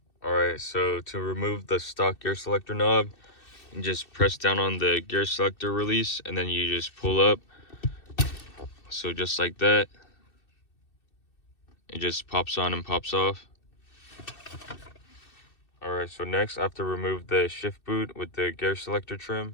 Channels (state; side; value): late; right; 2.6 ms